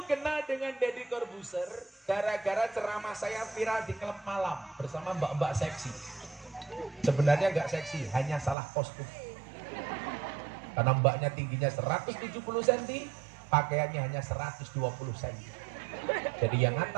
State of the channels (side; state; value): left; drops out; at 8.6 s